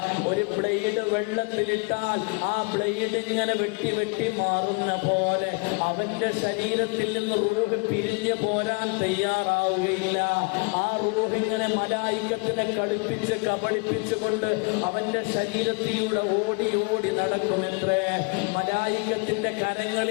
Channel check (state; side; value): quieter; right; 32.2 dB